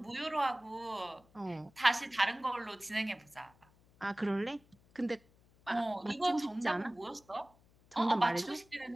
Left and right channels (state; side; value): noise; left; hum, 29 dB below the sound